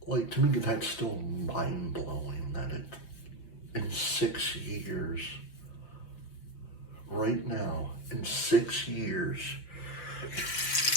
Like, to me, that's still mind-blowing that in 6 years, right now, in 6 years,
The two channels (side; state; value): right; late; 5.7 ms